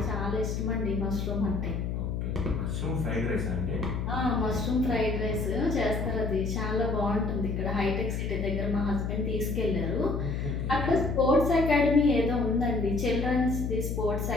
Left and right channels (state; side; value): noise; left; hum, 2 dB below the sound